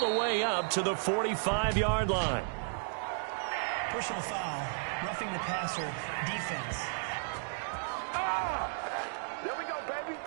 way up to the 45-yard line. Personal foul, roughing the passer, defense.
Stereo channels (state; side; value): silent; left; digital silence